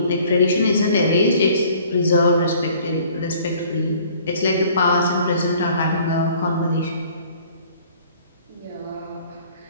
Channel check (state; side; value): inverted; both; correlation -0.54